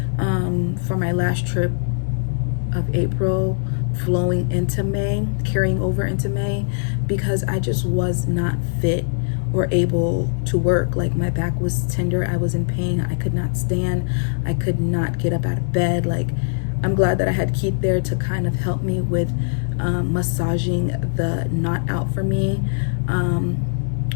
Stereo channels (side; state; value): right; silent; 62 dB below the other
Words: for my last trip of April, flowing into May, carrying over into May, because I just was not fit or able to work. Like, my back was tender, I was in pain, I could not stand, I could not get up out of bed. Like, I'm glad that I had Keith there to kind of help me with massaging the knot out for me.